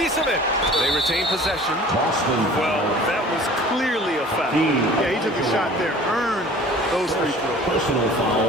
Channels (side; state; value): both; normal; correlation 0.46